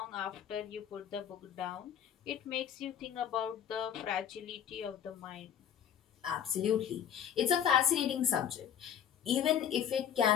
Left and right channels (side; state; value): right; quieter; 9.2 dB